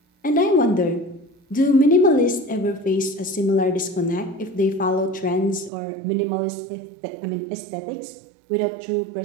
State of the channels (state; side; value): drops out; left; at 5.7 s